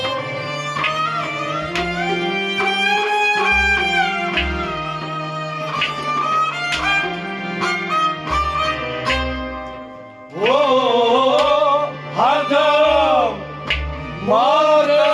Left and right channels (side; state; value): both; identical; correlation 1.00